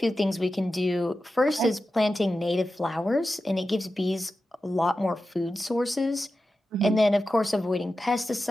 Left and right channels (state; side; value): normal; both; correlation 0.92